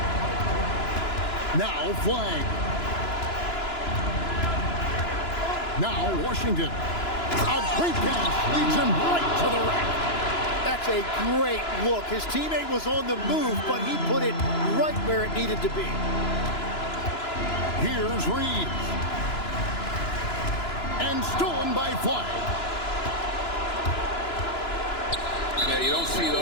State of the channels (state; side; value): late; right; 2.9 ms